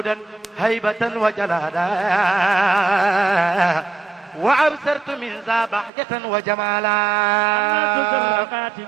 هيبة وجلالا وأبصرت من ذا بهجة وجمالا الناس خاتم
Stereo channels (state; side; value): drops out; left; at 5.9 s